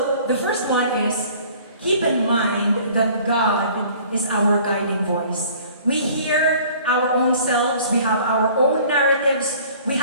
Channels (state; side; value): inverted; both; correlation -0.51